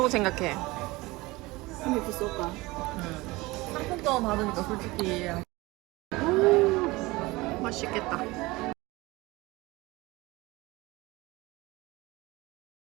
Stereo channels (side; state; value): left; quieter; 21.5 dB